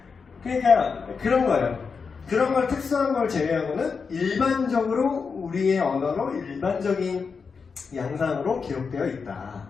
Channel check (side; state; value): right; quieter; 5.4 dB